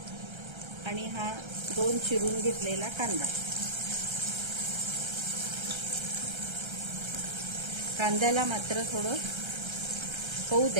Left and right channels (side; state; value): left; late; 1.3 ms